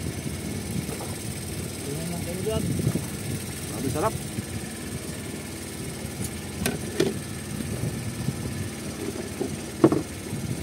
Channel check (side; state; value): both; identical; correlation 1.00